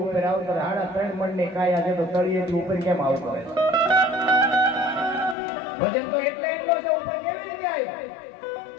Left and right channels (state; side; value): drops out; right; at 5.4 s